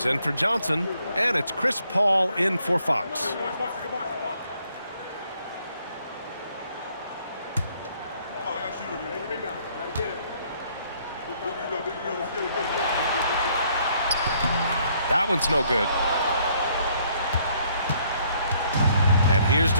in for Johnson, and it's Chris Paul in for Fox. That one's no good. And here's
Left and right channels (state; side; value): inverted; both; correlation -0.66